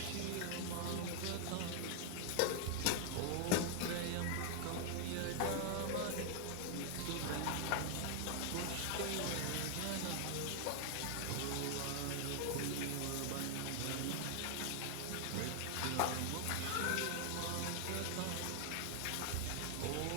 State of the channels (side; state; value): both; different; correlation 0.00